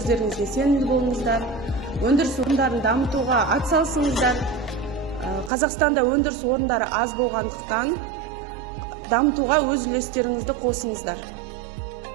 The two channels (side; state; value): left; drops out; at 5.5 s